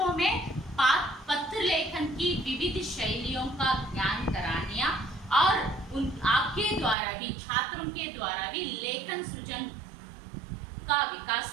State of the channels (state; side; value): drops out; left; at 7.0 s